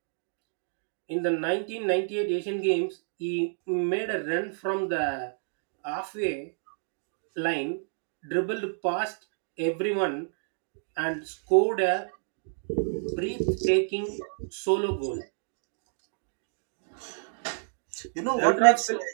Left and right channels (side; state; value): left; silent; digital silence